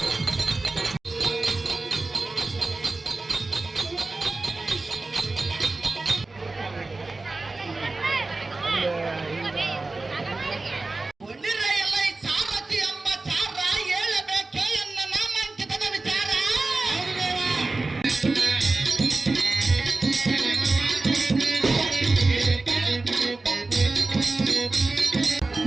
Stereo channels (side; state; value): left; quieter; 3.4 dB